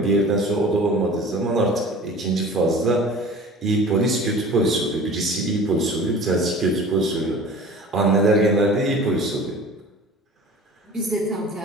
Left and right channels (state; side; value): normal; both; correlation 0.42